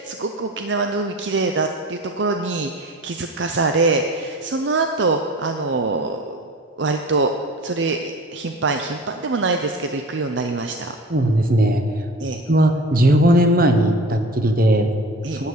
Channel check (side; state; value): both; normal; correlation 0.39